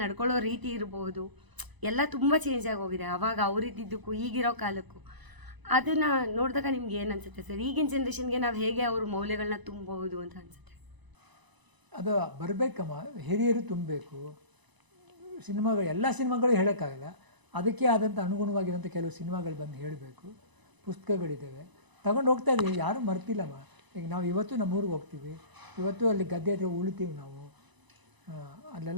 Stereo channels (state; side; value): late; left; 1.0 ms